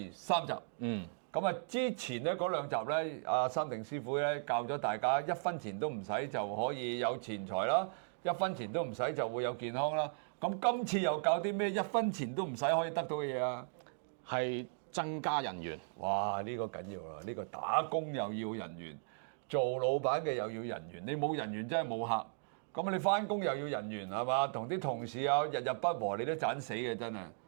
3集。咁啊，之前咧嗰2集咧，阿三定師傅咧教咗大家1分錢都唔使就可以有錢財啦，1分錢都唔使就會有健康啦。咁今次又教啲咩1分錢都唔使可以得到嘅嘢啊？係增加人緣。哇！呢個緊要啦，呢個打工又要人緣。做老闆嘅又要人緣，你冇人緣真係冇客。咁你翻工又要人緣係嘛？同啲同事啊日日不和，你都盞死嘅真係。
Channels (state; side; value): silent; left; digital silence